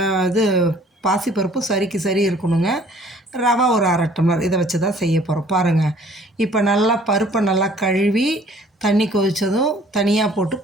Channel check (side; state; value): both; normal; correlation 0.56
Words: பாசிப்பருப்பும் சரிக்கு சரி இருக்கணுங்க. ரவை ஒரு 1/2 டம்ளர், இதை வச்சு தான் செய்ய போகிறோம் பாருங்கள். இப்போ நல்லா பருப்பை நல்லா கழுவி தண்ணி கொதித்ததும் தனியாக போட்டு